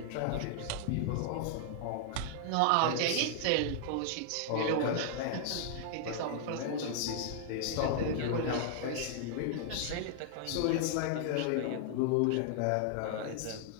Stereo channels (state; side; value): different; both; correlation 0.00